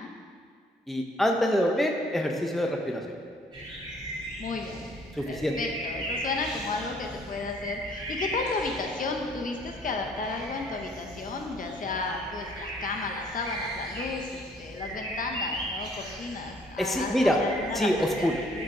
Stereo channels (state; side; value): normal; both; correlation 0.60